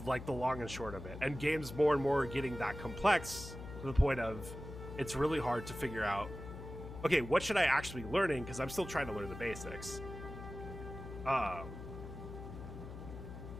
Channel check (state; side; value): noise; left; hum, 11 dB below the sound